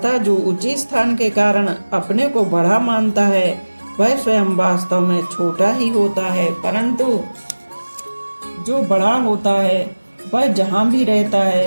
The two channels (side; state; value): both; inverted; correlation -1.00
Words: जो ऊंचे स्थान के कारण अपने को बड़ा मानता है वह स्वयं वास्तव में छोटा ही होता है। परंतु जो बड़ा होता है वह जहाँ भी रहता